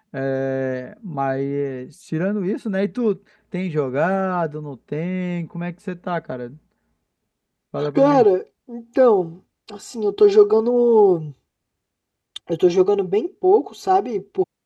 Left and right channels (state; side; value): identical; both; correlation 1.00